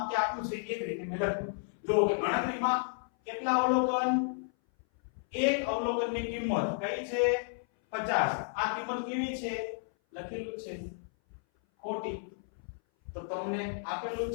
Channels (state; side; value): silent; right; 56 dB below the other